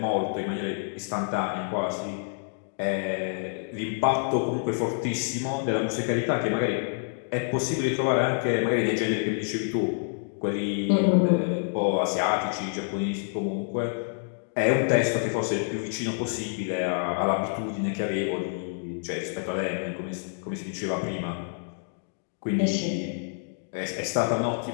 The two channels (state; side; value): silent; right; digital silence